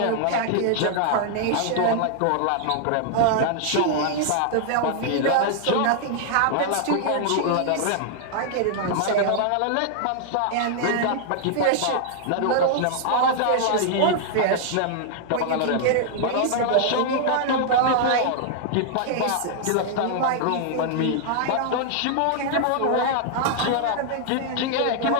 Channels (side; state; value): both; different; correlation -0.01